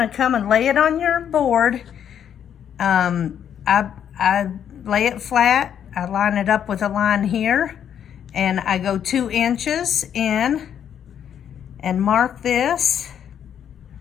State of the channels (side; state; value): right; quieter; 9.0 dB